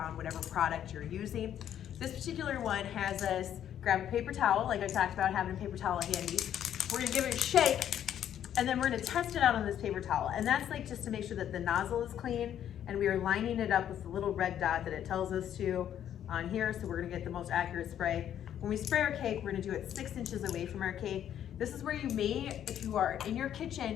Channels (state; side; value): quieter; right; 10.3 dB